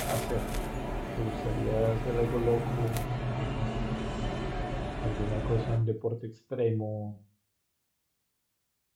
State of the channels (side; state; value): both; identical; correlation 1.00